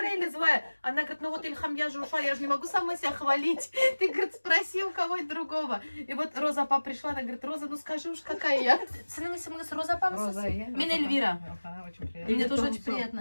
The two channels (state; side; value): inverted; both; correlation -1.00